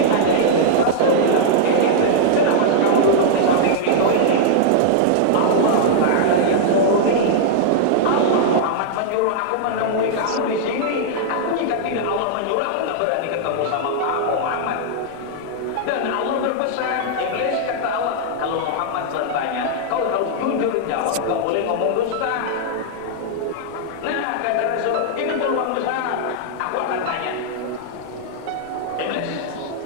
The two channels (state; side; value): different; both; correlation -0.01